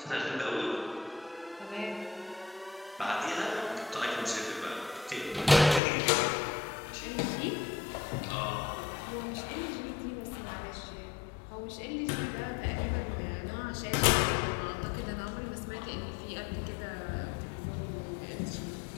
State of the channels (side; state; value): right; drops out; at 5.8 s